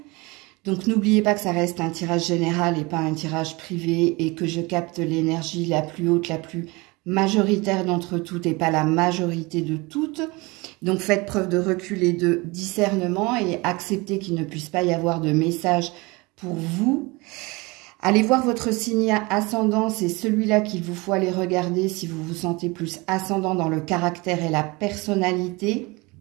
Donc n'oubliez pas que ça reste un tirage général et pas un tirage privé et que je capte l'énergie la plus haute, la plus majoritaire d'entre toutes et pas la majorité de toutes. Donc faites preuve de recul et de discernement et acceptez qu'il ne puisse pas y avoir de message pour vous. Allez voir votre signe ascendant, c'est celui-là qu'il vous faut aller regarder si vous vous sentez plus ascendant dans le caractère et la personnalité.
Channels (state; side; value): quieter; left; 24.9 dB